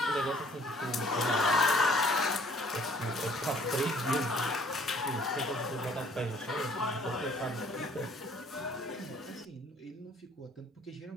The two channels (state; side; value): normal; both; correlation 0.58